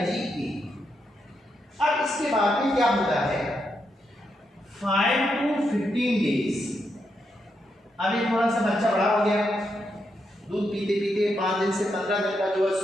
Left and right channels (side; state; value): both; normal; correlation 0.82